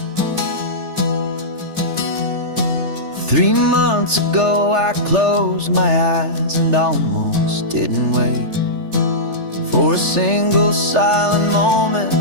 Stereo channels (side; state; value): left; late; 3.4 ms